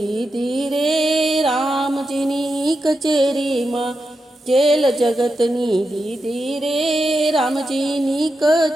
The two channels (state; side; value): normal; both; correlation 0.87